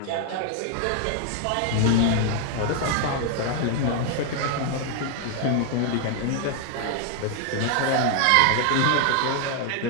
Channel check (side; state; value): both; different; correlation 0.00